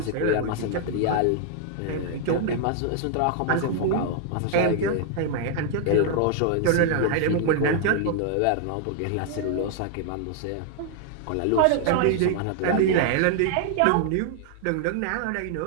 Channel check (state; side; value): different; both; correlation 0.00